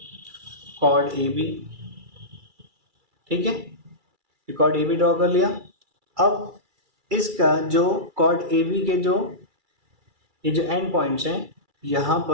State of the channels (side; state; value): left; late; 2.3 ms